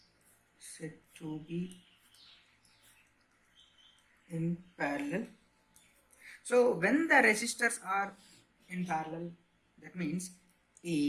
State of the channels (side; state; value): both; identical; correlation 1.00